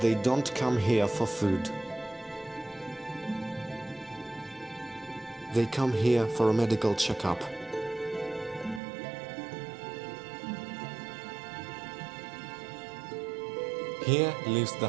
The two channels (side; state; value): left; drops out; at 8.8 s